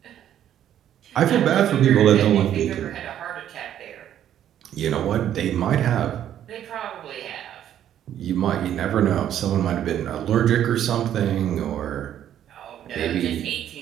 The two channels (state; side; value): quieter; left; 10.7 dB